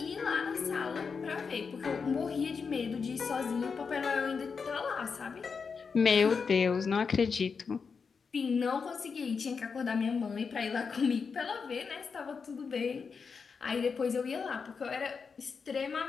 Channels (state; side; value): quieter; right; 5.5 dB